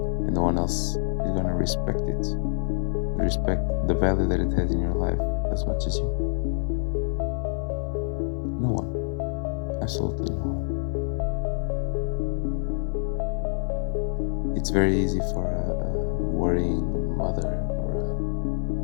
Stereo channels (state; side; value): silent; right; 61 dB below the other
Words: And no one else is going to respect the value that it has in your life as much as you. No one. Absolutely no one. It's very easy for a worrying mother